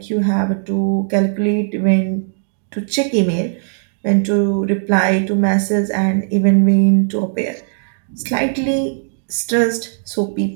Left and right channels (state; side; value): silent; left; digital silence